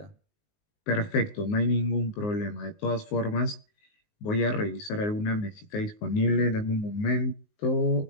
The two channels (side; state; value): right; late; 19 ms